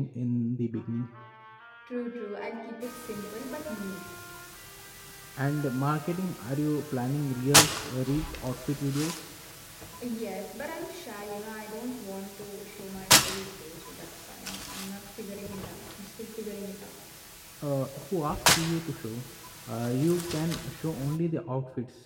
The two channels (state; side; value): identical; both; correlation 1.00